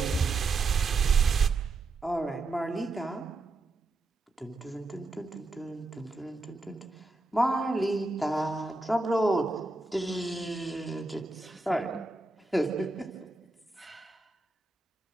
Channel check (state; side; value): quieter; left; 3.4 dB